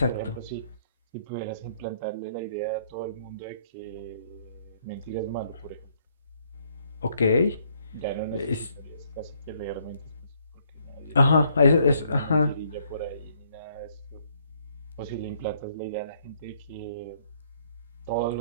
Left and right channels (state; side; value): inverted; both; correlation -0.67